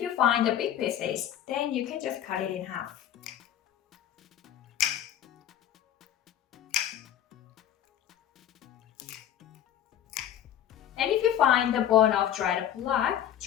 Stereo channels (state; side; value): quieter; right; 10.7 dB